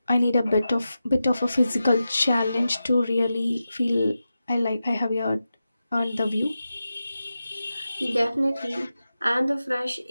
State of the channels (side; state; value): both; inverted; correlation -0.92